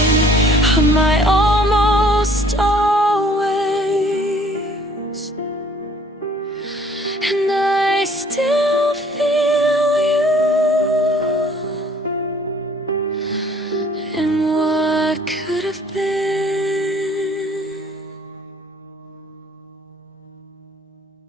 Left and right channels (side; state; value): both; normal; correlation 0.57